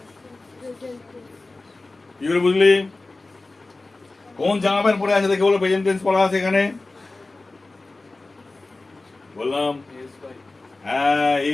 কি করে বুঝলি? কোন জামা প্যান্ট পরে আছে দেখে বলো প্রেজেন্ট টেন্স পড়া আছে এখানে? বললাম হ্যাঁ,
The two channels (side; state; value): right; quieter; 3.2 dB